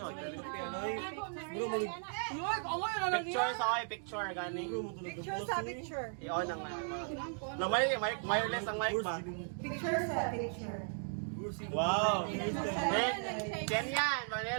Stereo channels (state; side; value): silent; left; 53 dB below the other